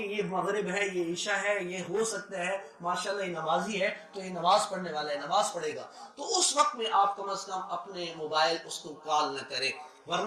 یہ مغرب ہے، یہ عشاء ہے، یہ ہو سکتا ہے ماشاءاللہ یہ نمازی ہے تو یہ نماز پڑھنے والا ہے، نماز پڑھے گا. تو اس وقت میں آپ کم از کم اپنے موبائل اس کو کال نہ کریں،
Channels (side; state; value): both; identical; correlation 1.00